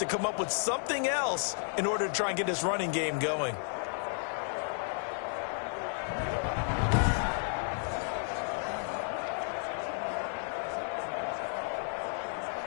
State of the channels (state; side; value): silent; right; 56 dB below the other